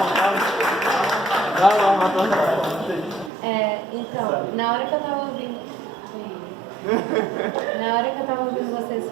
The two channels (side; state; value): left; drops out; at 3.3 s